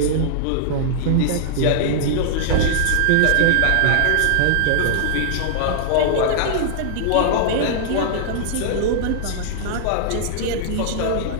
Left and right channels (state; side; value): different; both; correlation -0.01